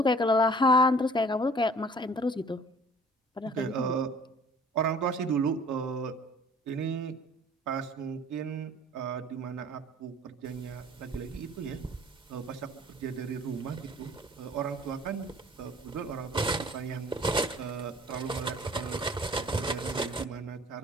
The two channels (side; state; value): both; normal; correlation 0.51